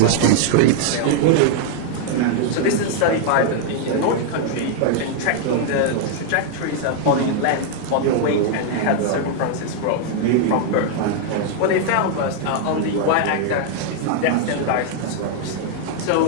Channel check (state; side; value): different; both; correlation 0.00